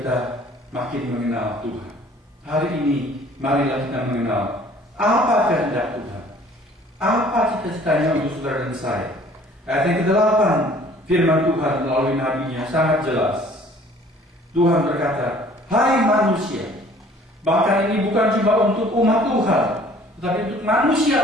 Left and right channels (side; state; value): both; normal; correlation 0.54